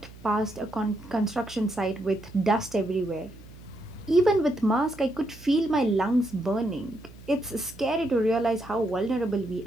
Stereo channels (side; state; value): right; noise; hum, 19 dB below the sound